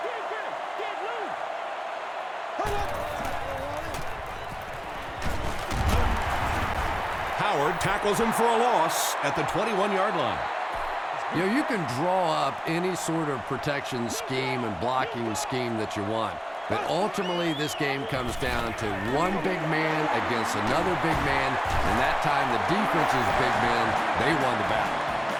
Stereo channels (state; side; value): identical; both; correlation 1.00